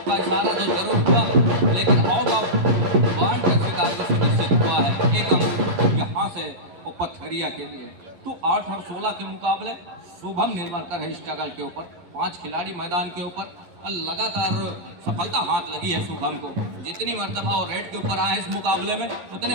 का इशारा तो जरूर हुआ, लेकिन आउट ऑफ वार्ड के शिकार को सुनिश्चित हुआ है। एक अंक यहाँ से वो पथरिया के लिए। तो 8 और 16 के मुकाबले शुभम निर्मलकर है स्ट्रगल के ऊपर, 5 खिलाड़ी मैदान के ऊपर। लगातार सफलता हाथ लगी है शुभम को। जितनी मरतबा वो रेड के ऊपर आए इस मुकाबले में,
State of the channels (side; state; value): left; late; 12 ms